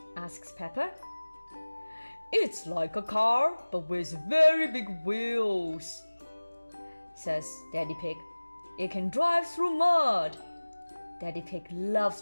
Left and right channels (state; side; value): inverted; both; correlation -1.00